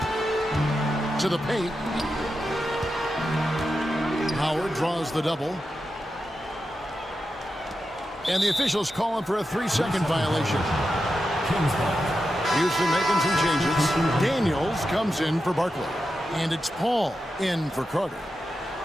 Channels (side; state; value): both; normal; correlation 0.89